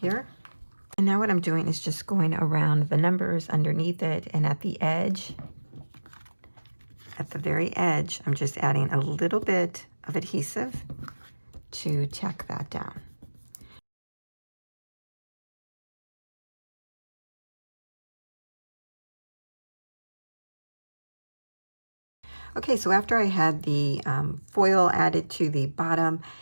And now what I'm doing is just going around the numbers underneath it, and at the edge, at the very edge, I'm just adding a little bit of adhesive to tack that down. Okay, so after I had the foil added to the bottom,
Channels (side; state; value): both; inverted; correlation -1.00